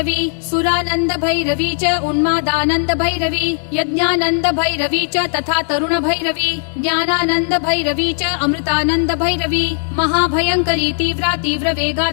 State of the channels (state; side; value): silent; right; 58 dB below the other